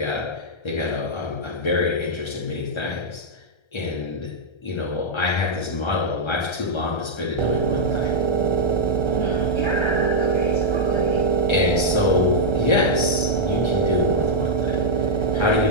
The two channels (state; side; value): late; right; 1.3 ms